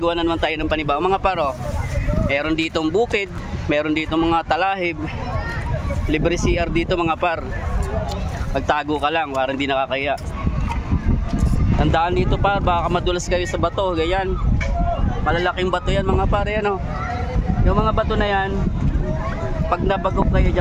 na naman tayo ng panibago mga paro. Meron ditong bukid, meron ditong mga talahib, libre CR dito mga par. Pagtago ka lang, parang hindi nakakaya. Tandaan dito par, baka madulas kayo sa bato, ganyan. Malalaking bato yan mga par, yan o. Yung mga bato na yan, pag nabagok kayo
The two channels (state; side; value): identical; both; correlation 1.00